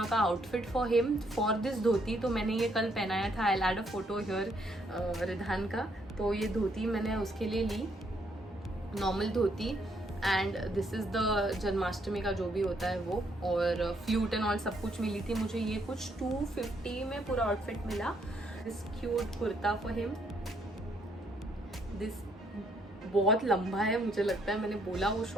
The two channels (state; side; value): normal; both; correlation 0.71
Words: का outfit for him for this dhoti. तो मैंने ये कल पहनाया था, I add a photo here Ridhan का। तो ये धोती मैंने उसके लिए ली, normal dhoti, and this is the Janmashtami का जो भी होता है वो, और फ्लूट एंड ऑल सब कुछ मिली थी मुझे। ये कुछ 250 में पूरा आउटफिट मिला। This cute kurta for him, this बहुत लंबा है मुझे लगता है, मैंने बोला वो